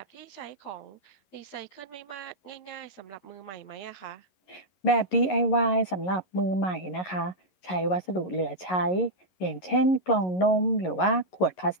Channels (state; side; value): late; right; 11 ms